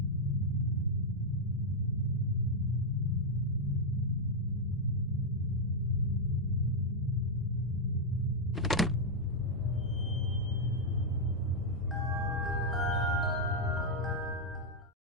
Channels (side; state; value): both; normal; correlation -0.02